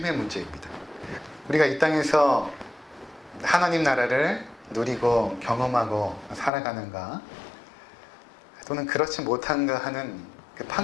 문제입니다. 우리가 이 땅에서 하나님 나라를 누리고 경험하고 살아가는가 또는 그렇지 못한가 하는 그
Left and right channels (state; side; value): drops out; right; at 6.5 s